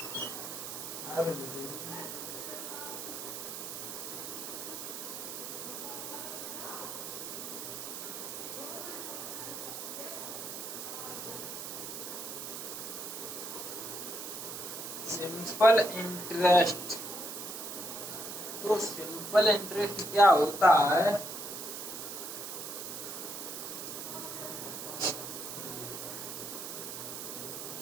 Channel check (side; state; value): right; noise; hiss, 7 dB below the sound